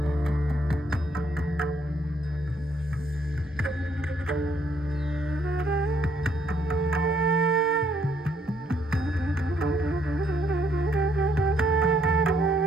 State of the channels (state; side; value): normal; both; correlation 0.68